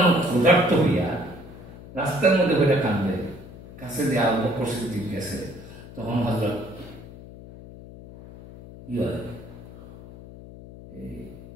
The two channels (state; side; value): noise; left; hum, 16 dB below the sound